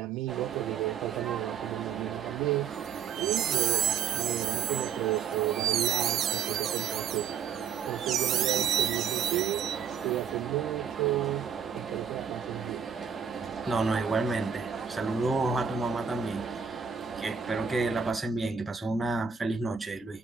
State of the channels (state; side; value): quieter; left; 7.0 dB